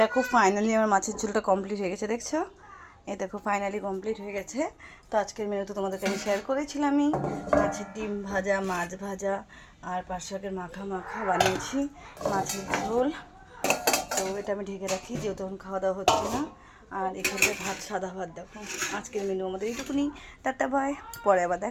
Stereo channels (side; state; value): both; identical; correlation 1.00